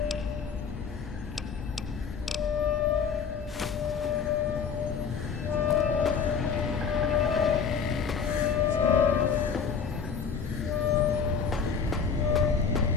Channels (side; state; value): right; quieter; 6.1 dB